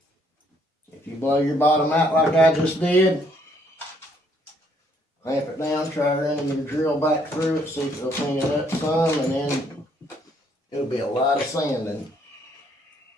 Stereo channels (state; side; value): normal; both; correlation 0.68